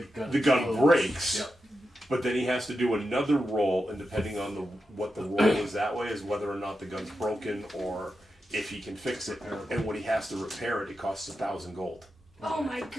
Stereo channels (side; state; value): both; normal; correlation 0.89